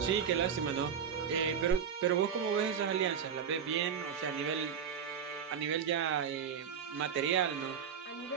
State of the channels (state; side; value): quieter; left; 7.5 dB